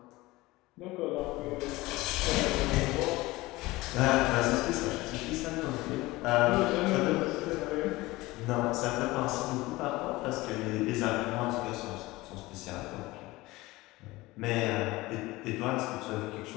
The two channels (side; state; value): right; quieter; 20.0 dB